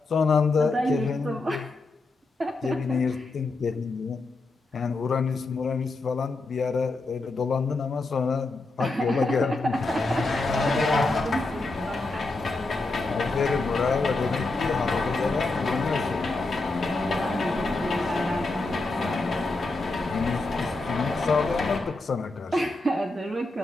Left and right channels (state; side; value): quieter; right; 3.2 dB